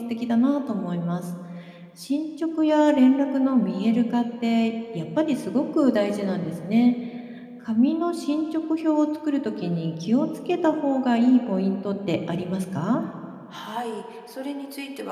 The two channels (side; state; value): both; identical; correlation 1.00